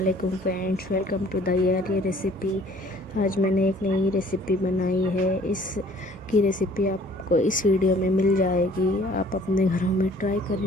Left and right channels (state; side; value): normal; both; correlation 0.55